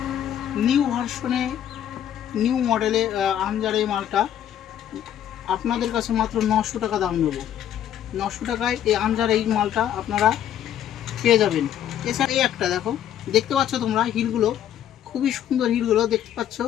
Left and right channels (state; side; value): quieter; right; 10.6 dB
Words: নিউ ভার্সনে, নিউ মডেলে আমজার এই মালটা আপনাদের কাছে মাত্র 900 টাকা দাম নেব। 900 টাকায় এই আমজার এই মালটা আপনারা পেয়ে যাবেন। এছাড়া এই একটা দেখো, দেখতে পাচ্ছ তোমরা হিলগুলো, খুবই সুন্দর হিলগুলো দেখতে পাচ্ছ।